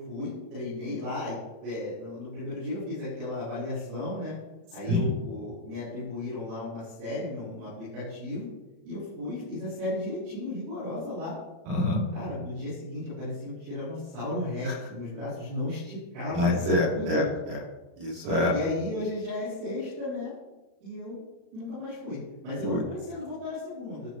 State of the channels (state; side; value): late; left; 36 ms